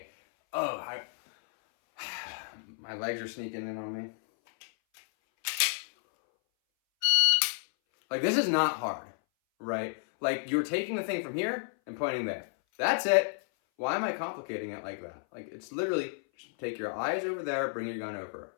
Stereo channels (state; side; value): silent; right; 57 dB below the other